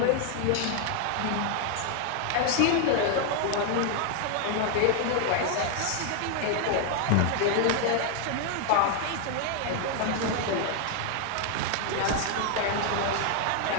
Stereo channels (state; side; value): different; both; correlation 0.01